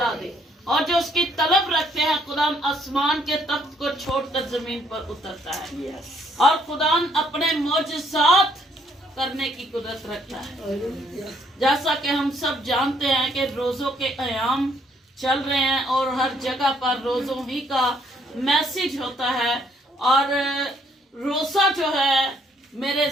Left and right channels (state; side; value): normal; both; correlation 0.67